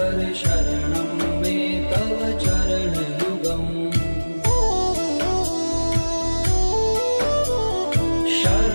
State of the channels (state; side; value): inverted; both; correlation -1.00